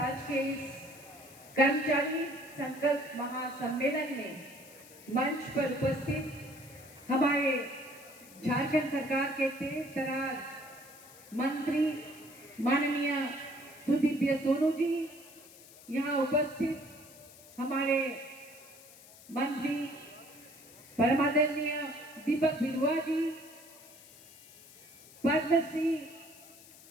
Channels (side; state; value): left; noise; hiss, 21 dB below the sound